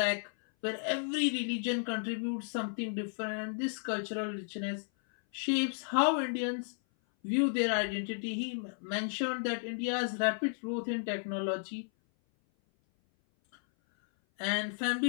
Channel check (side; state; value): right; silent; 55 dB below the other